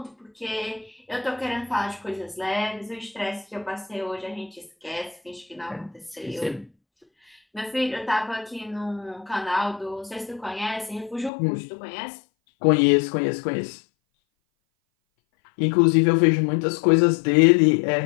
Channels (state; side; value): drops out; right; at 11.3 s